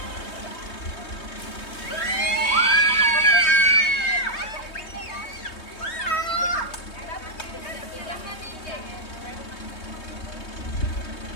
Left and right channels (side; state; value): right; late; 3.2 ms